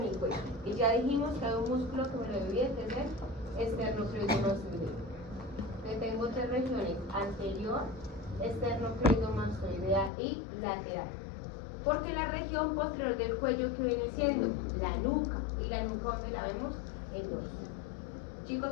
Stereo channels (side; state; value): right; drops out; at 10.1 s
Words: cuello y ya dijimos que hay un músculo que me lo divide, que es el esternocleidomastoideo. Tengo tres regiones: anterior, esternocleidomastoidea y lateral. Porque la región posterior del cuello, que viene siendo la nuca, y la nuca, ¿dónde la vemos? El dorso. ¿Chicos